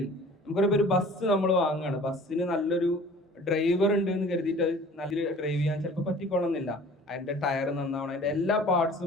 നമുക്കൊരു ഒരു ബസ് നമ്മൾ വാങ്ങുകയാണ്, ബസ്സിന് നല്ലൊരു ഡ്രൈവർ ഉണ്ട് എന്ന് കരുതിയിട്ട് അത് നല്ല ഡ്രൈവ് ചെയ്യാൻ ചിലപ്പോൾ പറ്റിക്കൊള്ളുന്നില്ല. അതിന്റെ ടയർ നന്നാവണം, അതിന്റെ എല്ലാ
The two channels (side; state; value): both; normal; correlation 0.47